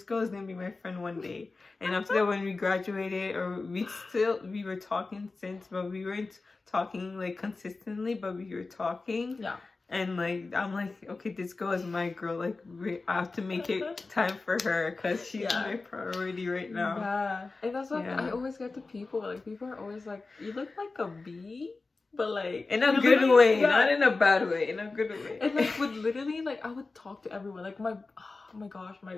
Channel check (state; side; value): quieter; right; 3.7 dB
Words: girl is gonna be my friend one day. And after that, when we graduated, or we were talking since, but we weren't talking like consistently, but we were talking. And like, I'm like, okay, this girl is my girl. Like, I have to make it time for her, because she's my priority right now. And that's like, I always get to people. Like, people are always like, you look like a bee. But like, in a good way, not in a bad way, in a good way. And like, would literally, like, I would talk to everyone. Like, oh my gosh,